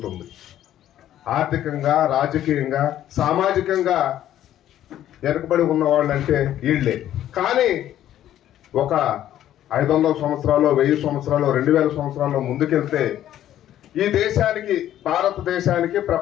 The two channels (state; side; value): quieter; right; 12.0 dB